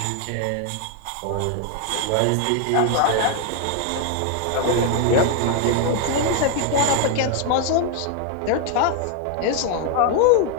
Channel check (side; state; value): both; different; correlation 0.00